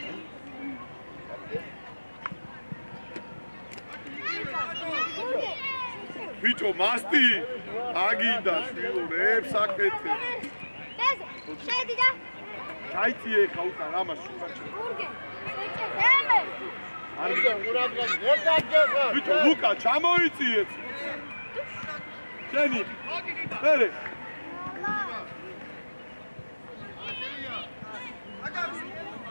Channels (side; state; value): both; inverted; correlation -1.00